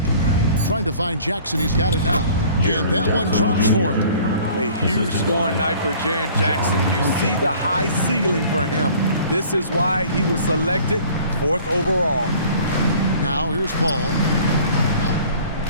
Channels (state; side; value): inverted; both; correlation -0.50